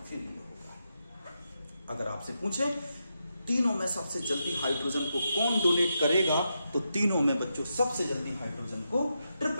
ये होगा। अगर आपसे पूछे तीनों में सबसे जल्दी हाइड्रोजन को कौन डोनेट करेगा, तो तीनों में बच्चों सबसे जल्दी हाइड्रोजन को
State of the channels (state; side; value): inverted; both; correlation -0.85